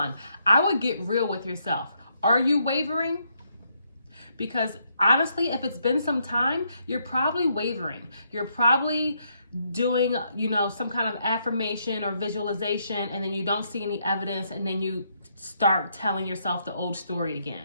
I would get real with yourself. Are you wavering? Because honestly, if it's been some time, you're probably wavering. You're probably doing, some kind of affirmation or visualization, and then you don't see any evidence, and then you start telling yourself the old story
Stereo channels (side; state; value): both; inverted; correlation -0.75